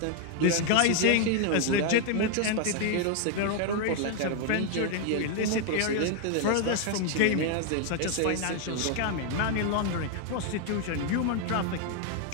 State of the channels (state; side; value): different; both; correlation 0.00